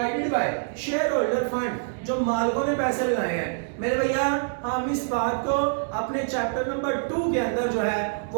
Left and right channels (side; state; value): left; silent; 61 dB below the other